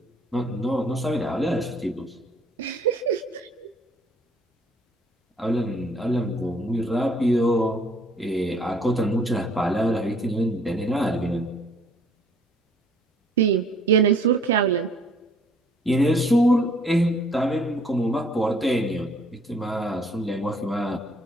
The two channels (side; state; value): both; normal; correlation 0.59